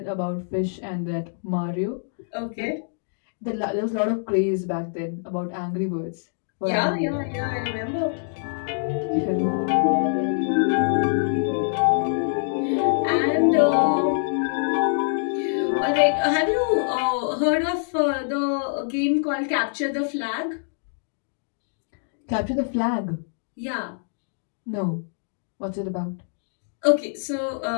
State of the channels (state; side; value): silent; right; digital silence